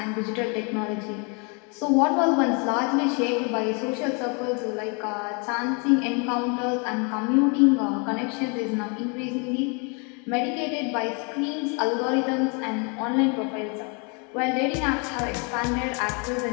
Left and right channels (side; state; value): right; quieter; 34.3 dB